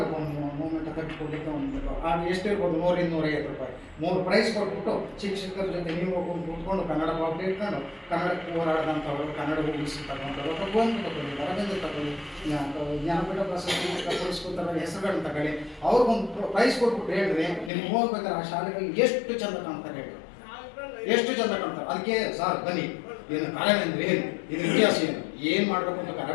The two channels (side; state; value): right; drops out; at 17.7 s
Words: ಒಂದು ಮೂಮೆಂಟ್ ಕಟ್ಟಿಕೊಡ್ಲಿಕ್ಕೆ ಒಂದು ಅದು ಎಷ್ಟಿರ್ಬೋದು 100-150 ರೂಪಾಯಿ 3 ಪ್ರೈಸ್ ಕೊಟ್ಬಿಟ್ಟು ಶಿಕ್ಷಕರ ಜೊತೆ ನೀವು ಹೋಗ್ಕೊಂಡು ಕೂತ್ಕೊಂಡು ಕನ್ನಡ ಪಾಠ ಇಟ್ಕೊಂಡು ಕನ್ನಡಕ್ಕೆ ಹೋರಾಡಿದಂಥವ್ರು, ಕನ್ನಡ ಉಳಿಸ್ತಕ್ಕಂಥವ್ರು ಅಥವಾ ಗೋವಿಂದ ತಗೊಳ್ಳಿ, ಅರವಿಂದ ತಗೊಳ್ಳಿ, ಜ್ಞಾನಪೀಠ ಪ್ರಶಸ್ತಿ ಪುರಸ್ಕೃತರ ಹೆಸರುಗಳನ್ನ ತಗೊಳ್ಳಿ, ಅವ್ರಿಗೊಂದು ಪ್ರೈಸ್ ಕೊಟ್ಬಿಟ್ಟು ಹೇಳಿದ್ರೆ ನಿಮ್ಗೆ ಹೋಗ್ಬೇಕಾದ್ರೆ ಆ ಶಾಲೆಗಳಲ್ಲಿ ಎಷ್ಟು ಚಂದ ಕಾಣ್ತಾರೆ ಹೇಳಿ, ಎಷ್ಟು ಚಂದ ಕಾಣ್ತಾರೆ. ಅದಕ್ಕೆ ಸರ್ ಬನ್ನಿ, ಏನು ಕರವೇ ಅಂದರೆ ಏನು, ಇದ್ರ ಇತಿಹಾಸ ಏನು ಮಾಡಬೇಕು ಅಂತ